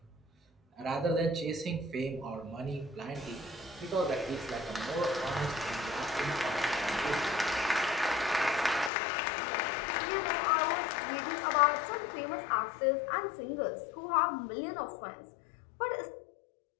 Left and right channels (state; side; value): drops out; right; at 8.9 s